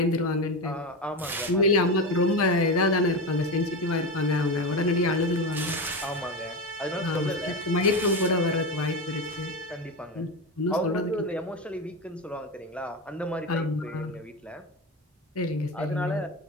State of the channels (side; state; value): both; normal; correlation 0.19